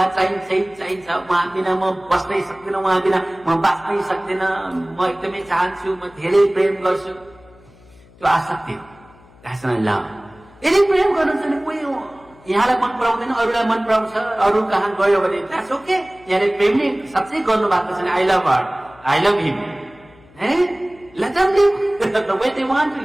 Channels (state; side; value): noise; left; hum, 26 dB below the sound